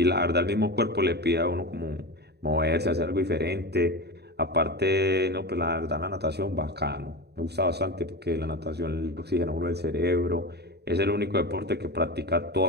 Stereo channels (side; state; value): left; late; 0.48 ms